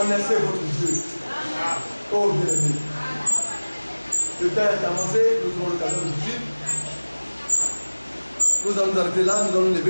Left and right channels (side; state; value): both; inverted; correlation -1.00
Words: votre Dieu. Oh bien-aimé. Le temps est avancé, nous aurons l'occasion de vivre. Nous allons nous arrêter là, nous allons nous